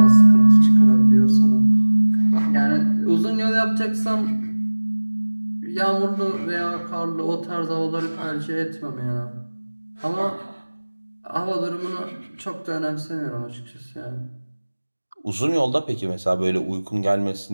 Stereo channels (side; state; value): both; inverted; correlation -1.00